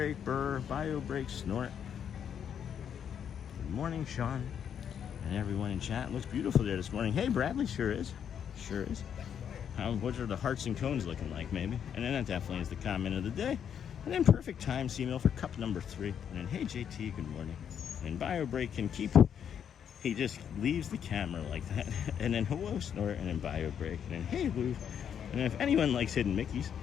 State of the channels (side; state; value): right; quieter; 8.4 dB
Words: burr, bio break, snort. Good morning, Sean, and everyone in chat. Looks beautiful there this morning. Hey Bradley, sure is, sure is. What are the hearts and cones looking like, maybe? And then that definitely is the comment of the day. And then perfect time, C-Mill for cup number 3. And then hey JT, good morning. And bio break can keep. He just leaves the camera like that. And then hello snort, and then bio break, and then hey Louvre. And if anyone likes hidden Mickeys,